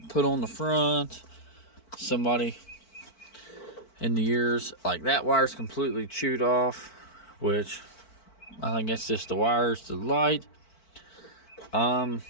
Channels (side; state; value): right; late; 4.5 ms